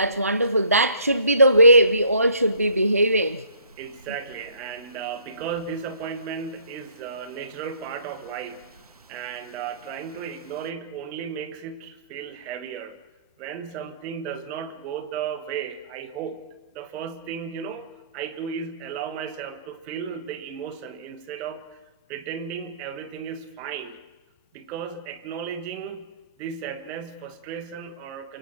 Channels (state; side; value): inverted; both; correlation -0.58